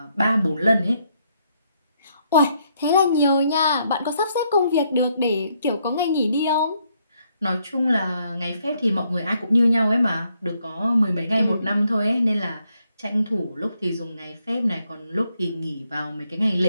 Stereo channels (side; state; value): both; inverted; correlation -0.74